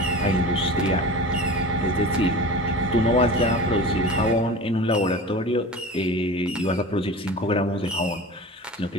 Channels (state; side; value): normal; both; correlation 0.34